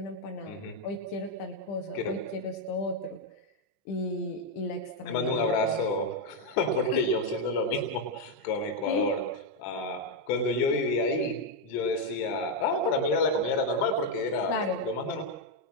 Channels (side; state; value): right; late; 20 ms